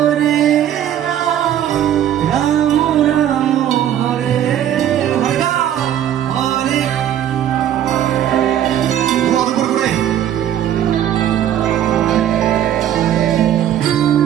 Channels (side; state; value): left; quieter; 10.9 dB